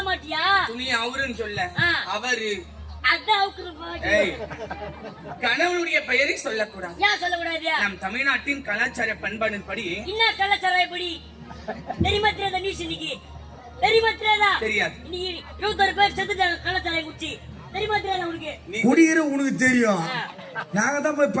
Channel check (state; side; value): identical; both; correlation 1.00